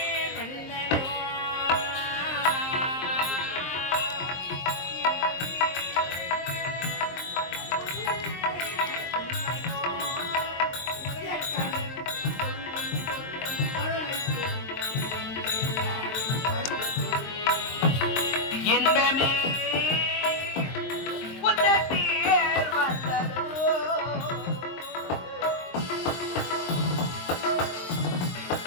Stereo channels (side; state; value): right; late; 23 ms